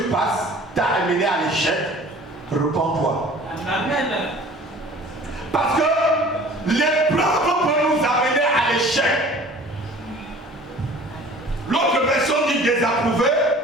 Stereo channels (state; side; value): normal; both; correlation 0.47